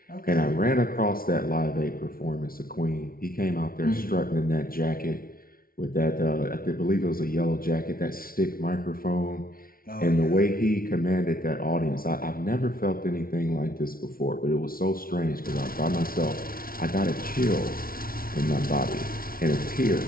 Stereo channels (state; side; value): late; right; 0.43 ms